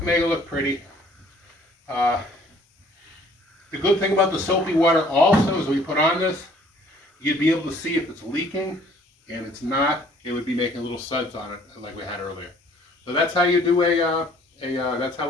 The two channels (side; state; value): both; normal; correlation 0.57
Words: make it look pretty. The good thing about the soapy water also is when you put on this, you'd be able to see if it's leaking, and it's not, it would be making little suds on it like we had earlier. So that's how you do that's